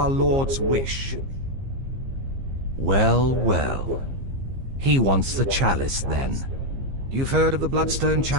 Lord's wish? Well, well. He wants the chalice, then. You've heard of the Bloodstone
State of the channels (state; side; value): late; left; 15 ms